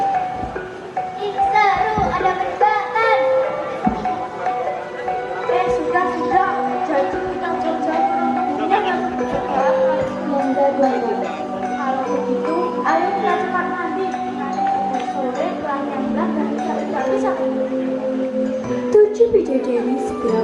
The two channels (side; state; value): both; identical; correlation 1.00